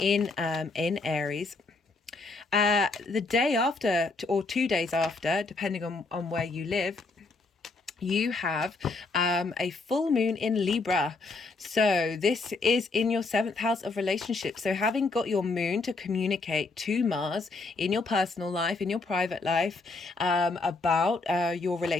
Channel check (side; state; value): right; quieter; 3.6 dB